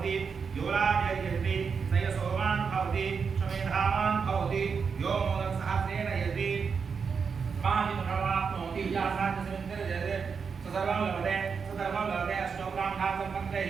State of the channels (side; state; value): left; quieter; 5.8 dB